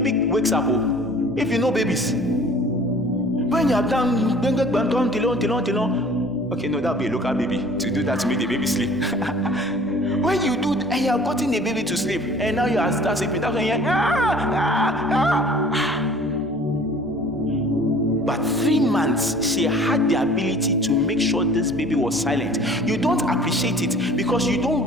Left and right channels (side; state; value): left; noise; rumble, 29 dB below the sound